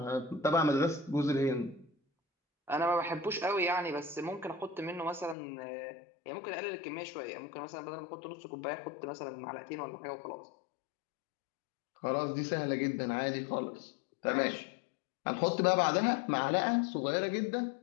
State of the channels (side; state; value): right; drops out; at 5.4 s